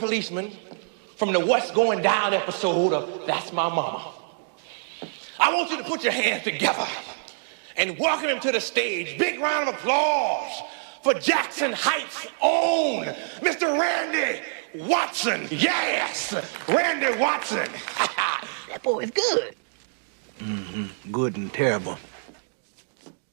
from the What's Going Down episode of That's My Mama. I want you to put your hands together and welcome him to the stage. Big round of applause for Jackson Heights' own Mr. Randy Watson. Yes, Randy Watson. That boy is good. Good and terrible.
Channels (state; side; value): silent; left; digital silence